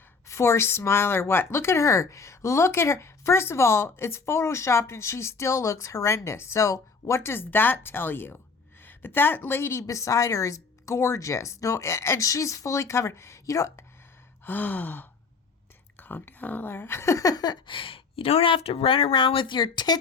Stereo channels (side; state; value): right; quieter; 4.8 dB